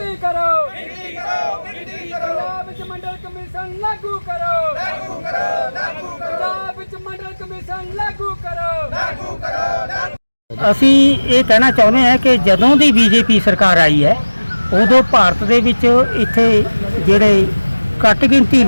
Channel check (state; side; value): inverted; both; correlation -1.00